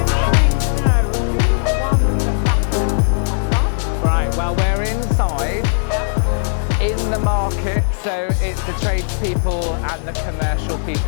dying to know who won the Battle of Covent Garden. Right, well, we're inside. In the market, so it's the tradespeople and the commercial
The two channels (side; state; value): right; silent; digital silence